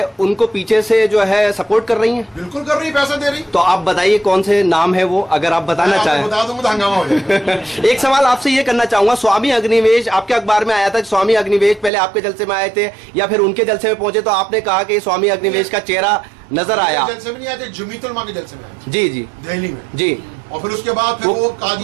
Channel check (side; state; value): left; drops out; at 11.9 s